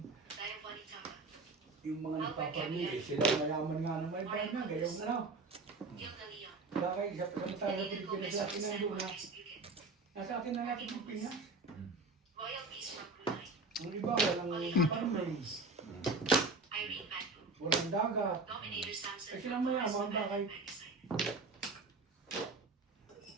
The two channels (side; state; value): left; quieter; 3.5 dB